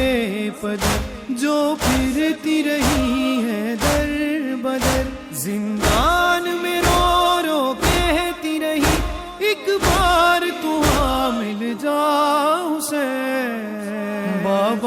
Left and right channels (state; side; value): identical; both; correlation 1.00